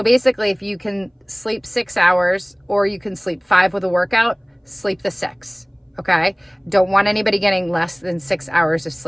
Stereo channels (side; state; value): both; identical; correlation 1.00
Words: basically, if you can sleep 6 hours or you can sleep 5 with a workout, sleep the 6, okay? Don't want anybody getting less than 6 hours of